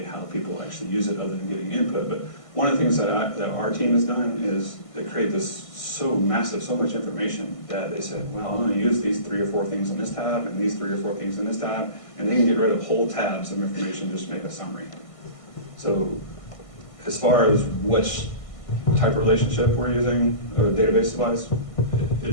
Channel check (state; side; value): late; right; 1.5 ms